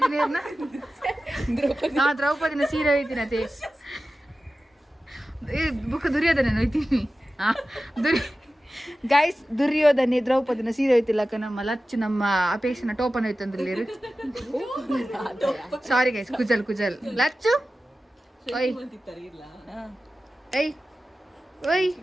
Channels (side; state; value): both; normal; correlation 0.95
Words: ಏರ್ನ ದ್ರೌಪದಿನ ಸೀರೆ ಹೋಯ್ತೀನಿ ಅದೇ ಬುಕ್ ದುರ್ಯೋಧನ ಹೋಯ್ತೀನಿ ಗೈಸ್ ದುರ್ಯೋಧನೆ ದ್ರೌಪದಿನ ಸೀರೆ ಹೋಯ್ತಿಲ್ಲಕ್ಕ ನಮ್ಮ ಲಚ್ಚು ನಮ್ಮ ಅಪೇಕ್ಷನ ಟೋಪನ್ ಹೋಯ್ತಂದ್ರಲ್ಲಿ ಸಾರಿ ಗೈಸ್ ಕುಜಲ್ ಲಚ್ಚು ಓಯ್ ಏಯ್ ಓಯ್